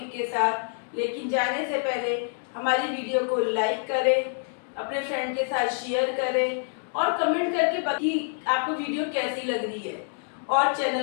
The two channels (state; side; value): silent; right; 60 dB below the other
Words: के साथ। लेकिन जाने से पहले हमारी वीडियो को लाइक करें, अपने फ्रेंड के साथ शेयर करें और कमेंट करके बताइए आपको वीडियो कैसी लग रही है, और